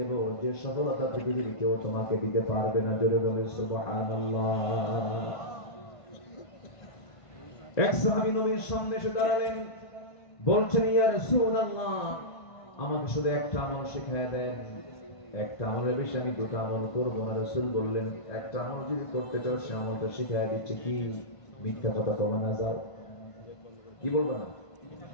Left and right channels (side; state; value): right; late; 1.5 ms